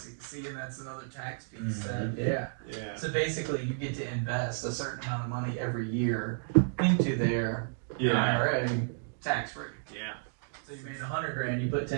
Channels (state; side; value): silent; left; digital silence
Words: See, and that's another tax piece. Mhm. Yeah. Yeah. So basically, you get to invest a certain amount of money every year into their IRA, tax free. Yeah. So you made $100,000, you put